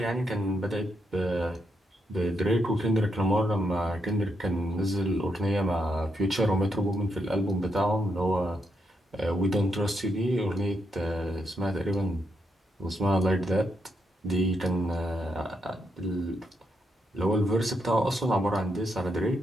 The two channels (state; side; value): normal; both; correlation 0.81